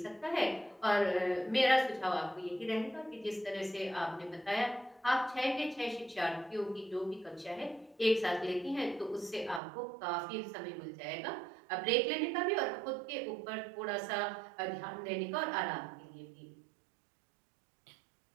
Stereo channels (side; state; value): left; drops out; at 9.6 s